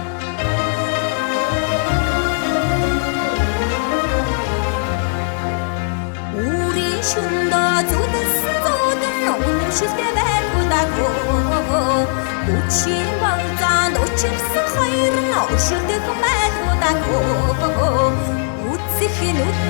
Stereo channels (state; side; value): silent; right; 67 dB below the other